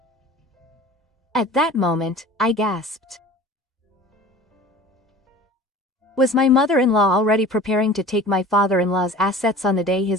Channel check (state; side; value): normal; both; correlation 0.42